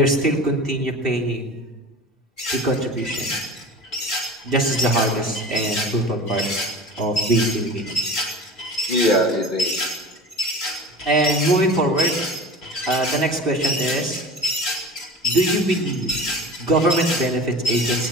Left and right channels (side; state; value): both; normal; correlation 0.36